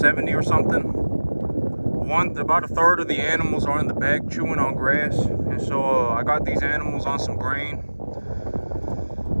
or something. About a third of the animals are in the back chewing on grass. And so I got these animals on some grain.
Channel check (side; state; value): both; inverted; correlation -1.00